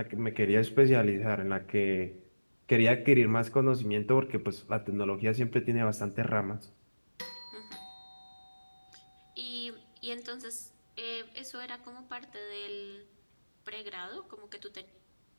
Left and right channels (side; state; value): both; inverted; correlation -1.00